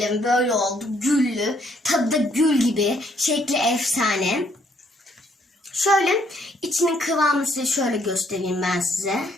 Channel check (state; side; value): normal; both; correlation 0.68